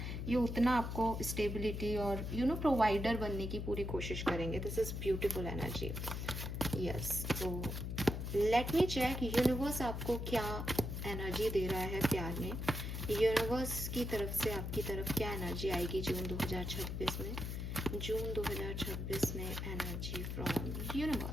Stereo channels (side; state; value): left; noise; hum, 4 dB below the sound